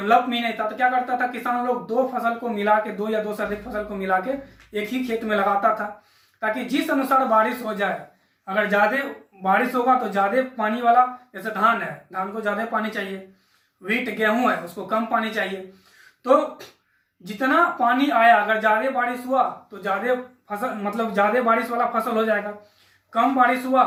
भी नहीं था, तो क्या करता था किसान लोग दो फसल को मिला के, दो या दो से अधिक फसल को मिला के एक ही खेत में लगाता था, ताकि जिस अनुसार बारिश हो जाए, अगर ज्यादा बारिश होगा तो ज्यादा पानी वाला, जैसे धान है, धान को ज्यादा पानी चाहिए, व्हीट गेहूं है उसको कम पानी चाहिए, तो जितना पानी आया अगर ज्यादा बारिश हुआ तो ज्यादा फसल, मतलब ज्यादा बारिश वाला फसल हो जाएगा, कम बारिश हुआ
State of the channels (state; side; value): identical; both; correlation 1.00